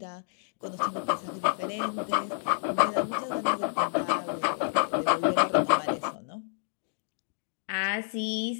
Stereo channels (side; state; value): right; silent; digital silence